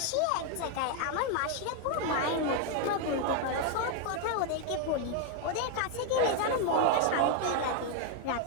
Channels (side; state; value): both; different; correlation 0.01